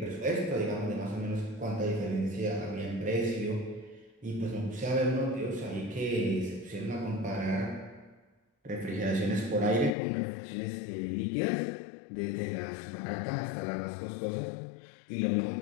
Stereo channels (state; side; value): drops out; right; at 9.9 s